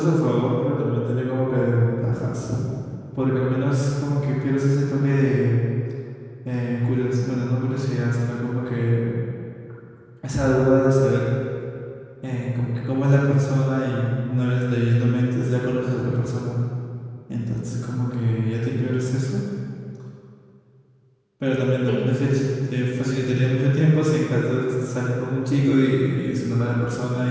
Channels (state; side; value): identical; both; correlation 1.00